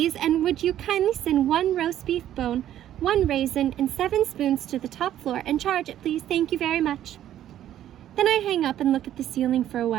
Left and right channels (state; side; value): quieter; left; 11.7 dB